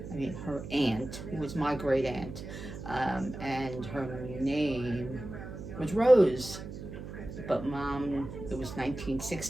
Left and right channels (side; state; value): right; noise; hum, 10 dB below the sound